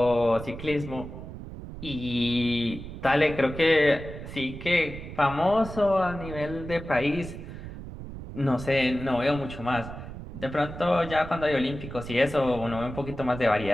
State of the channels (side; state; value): right; noise; rumble, 11 dB below the sound